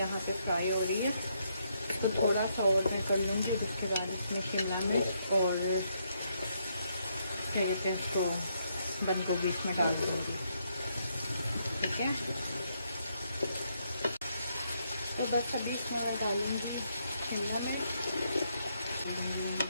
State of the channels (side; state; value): both; inverted; correlation -0.76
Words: पे फ्राई हो रही है, तो थोड़ा सा और मैं कर लूँगी। उसके बाद इसमें शिमला मिर्च और क्या कहते हैं उसको बंद गोभी इसमें डाल दूँगी, ठीक है। तो बस अभी इसमें मैं डालूँगी शिमला मिर्च,